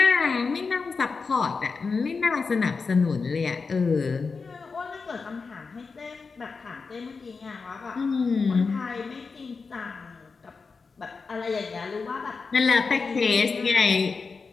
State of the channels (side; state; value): right; quieter; 4.7 dB